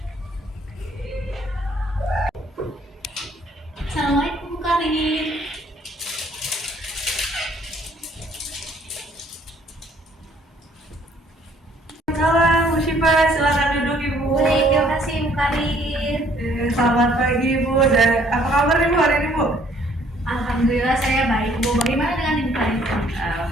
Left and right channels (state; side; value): normal; both; correlation 0.61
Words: Assalamualaikum Bu Karin. Salam Bu Syifa, silakan duduk Ibu. Baik, terima kasih Bu Karin. Selamat pagi Bu, dan apa kabar Ibu hari ini Bu? Alhamdulillah saya baik Bu. Bagaimana dengan Ibu Karin?